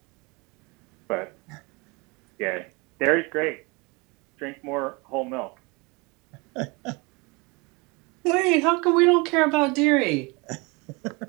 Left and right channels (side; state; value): left; quieter; 27.6 dB